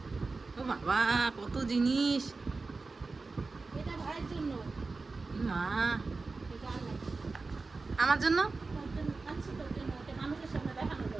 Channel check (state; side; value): quieter; left; 3.9 dB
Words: ও বাবা কত জিনিস। এটা ভাইয়ের জন্য। মা এটা আনলাম। আমার জন্য তোর জন্য আনছি, তোর জন্য। এটা মানুষের সামনে দেখানো